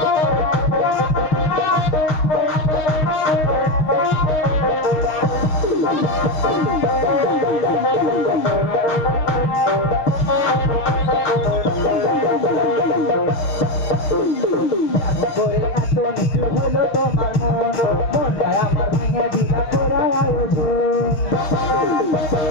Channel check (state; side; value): late; right; 6.5 ms